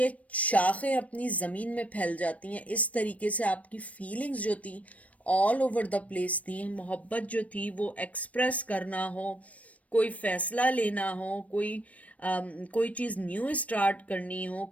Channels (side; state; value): right; late; 0.067 ms